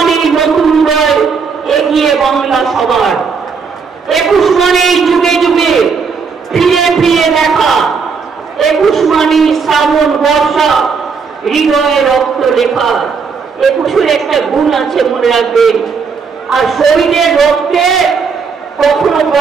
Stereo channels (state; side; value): quieter; left; 5.5 dB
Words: বাংলা সবার। 21 মানে যুগে যুগে ফিরে ফিরে দেখা, 21 মানে শ্রাবণ বর্ষা, হৃদয়ে রক্ত লেখা। 21-এর একটা গুণ আছে, মনে রাখবেন। আর শহীদের রক্তে কখনো